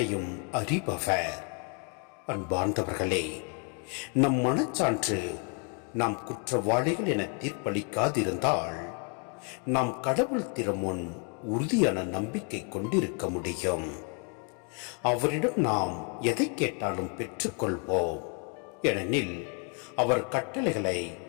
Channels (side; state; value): right; quieter; 39.4 dB